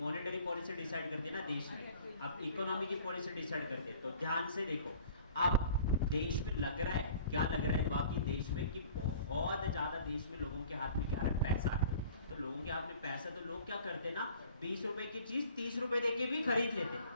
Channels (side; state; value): both; inverted; correlation -0.49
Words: पॉलिसी डिसाइड करती है ना देश में, अब इकोनॉमी की पॉलिसी डिसाइड करती है। तो ध्यान से देखो, अब देश में लग रहा है, क्या लग रहा है बाकी देश में, कि बहुत ज्यादा देश में लोगों के हाथ में क्या है, पैसा है। तो लोगों के हाथ में पैसा, तो लोग क्या करते हैं ना, 20 रुपए की चीज 30 रुपए देके भी खरीद लेते हैं,